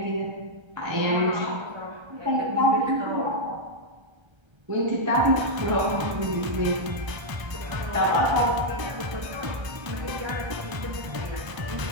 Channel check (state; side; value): late; left; 1.3 ms